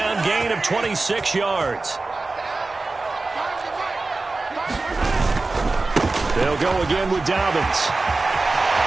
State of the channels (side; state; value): left; quieter; 3.5 dB